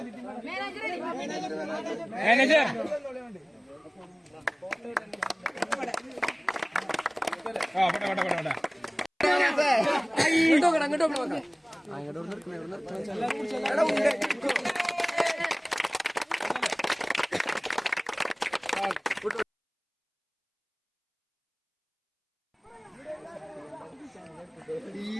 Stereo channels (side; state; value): both; identical; correlation 1.00